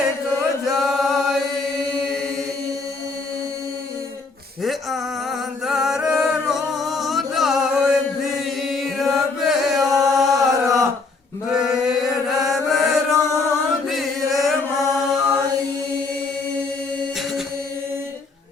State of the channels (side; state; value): right; quieter; 3.9 dB